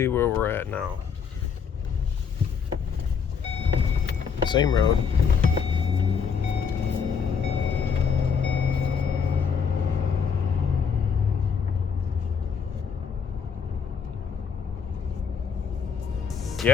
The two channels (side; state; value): right; quieter; 6.4 dB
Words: where we're at now. Same road.